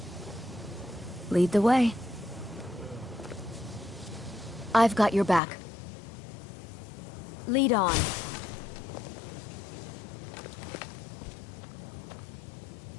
Lead the way. I've got your back. Lead on.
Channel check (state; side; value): drops out; right; at 5.4 s